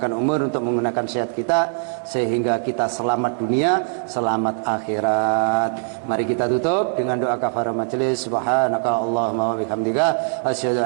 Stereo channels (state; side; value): silent; left; 60 dB below the other